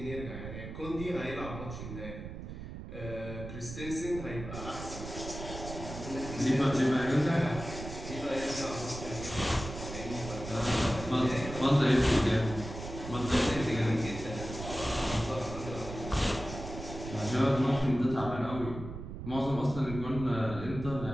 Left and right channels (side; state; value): right; noise; rumble, 9 dB below the sound